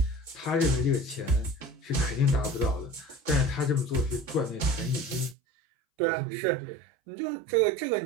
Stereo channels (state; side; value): drops out; left; at 5.4 s